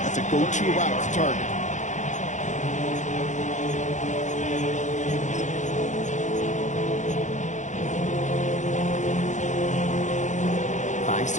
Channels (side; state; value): right; late; 0.35 ms